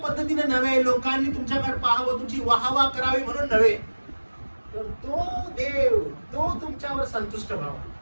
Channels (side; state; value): both; inverted; correlation -1.00